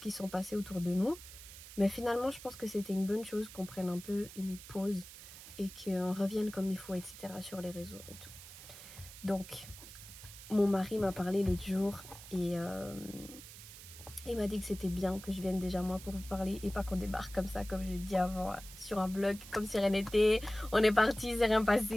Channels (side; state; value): right; noise; hiss, 15 dB below the sound